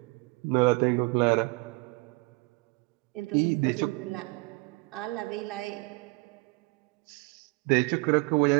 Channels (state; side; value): quieter; left; 27.1 dB